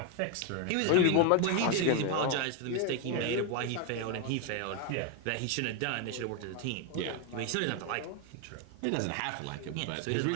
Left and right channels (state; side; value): different; both; correlation 0.01